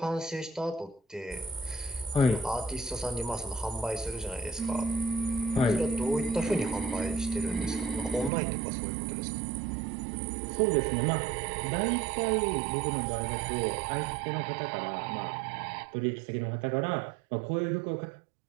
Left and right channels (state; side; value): drops out; left; at 8.3 s